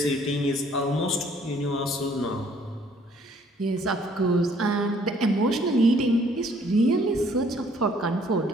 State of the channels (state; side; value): normal; both; correlation 0.61